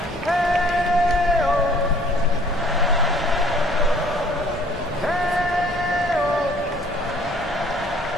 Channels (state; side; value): normal; both; correlation 0.56